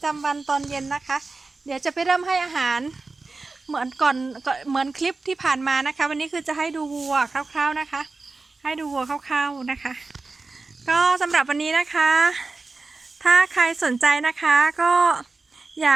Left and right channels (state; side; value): quieter; left; 3.8 dB